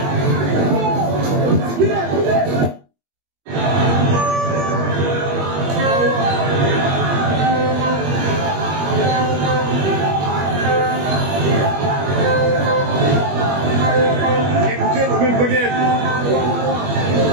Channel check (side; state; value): left; late; 21 ms